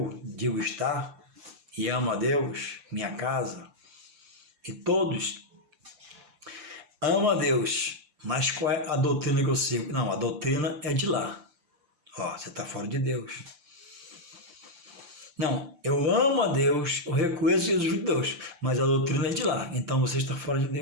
digo estar, e ama a Deus, minha casa, e todos, ama a Deus, mas qual é a doutrina que eu sigo? Não, a doutrina é de lá. Ó, você está fora de Deus. Não, eu amo a Deus, eu reconheço Jesus de Deus, mas a doutrina é de lá, então você está fora de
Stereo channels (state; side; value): late; left; 5.8 ms